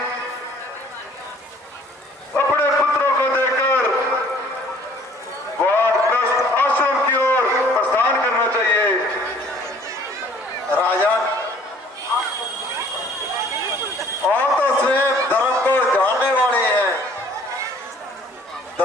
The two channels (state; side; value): normal; both; correlation 0.56